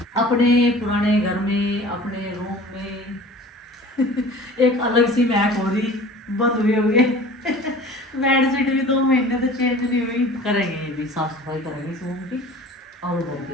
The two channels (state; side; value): normal; both; correlation 0.43